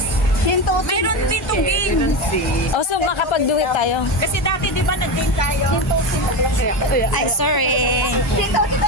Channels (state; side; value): normal; both; correlation 0.18